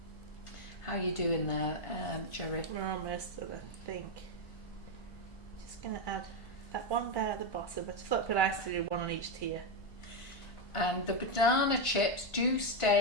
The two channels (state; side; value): late; right; 1.5 ms